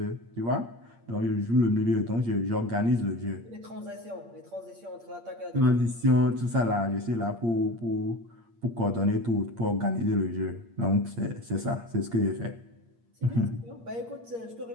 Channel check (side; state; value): left; late; 8.6 ms